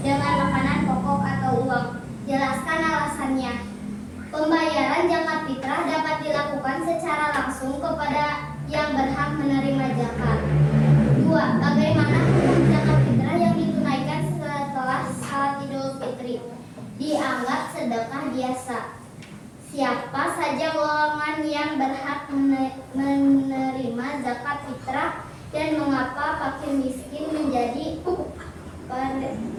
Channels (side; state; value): both; identical; correlation 1.00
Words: makanan pokok atau uang? Jelaskan alasannya. Pembayaran zakat fitrah dapat dilakukan secara langsung kepada yang berhak menerima zakat. 2. Bagaimana hukum zakat fitrah yang ditunaikan setelah salat Idul Fitri? Dianggap sedekah biasa. Siapa saja golongan yang berhak menerima zakat fitrah dan mengapa fakir miskin menjadi